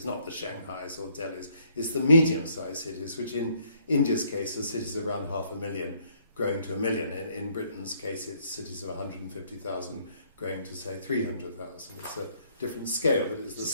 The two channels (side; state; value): both; inverted; correlation -0.66